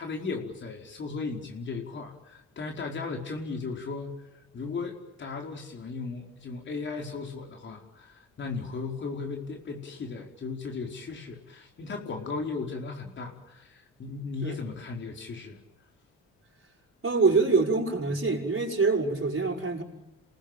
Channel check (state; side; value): normal; both; correlation 0.21